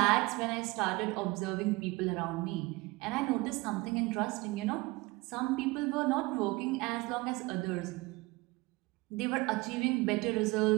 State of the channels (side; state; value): left; quieter; 23.2 dB